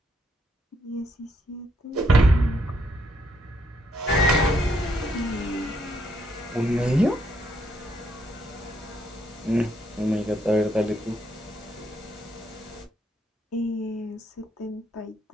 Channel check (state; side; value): normal; both; correlation 0.74